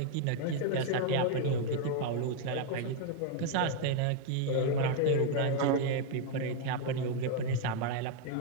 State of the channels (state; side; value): different; both; correlation 0.00